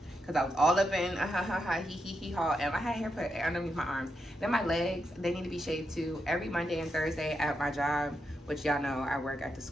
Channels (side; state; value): both; normal; correlation 0.84